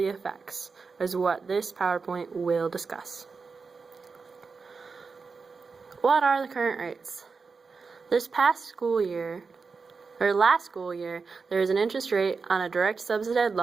effects? Is what this PowerPoint will discuss. What are the current rates? This past school year, last school year, there was an interest rate on a direct subsidized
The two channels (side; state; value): left; quieter; 4.8 dB